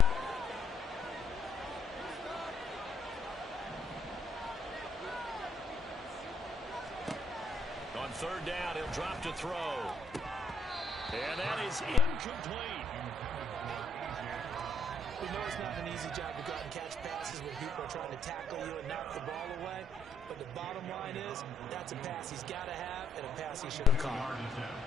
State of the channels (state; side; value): normal; both; correlation 0.70